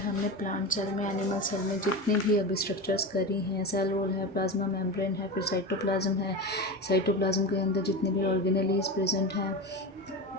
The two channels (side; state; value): both; normal; correlation 0.24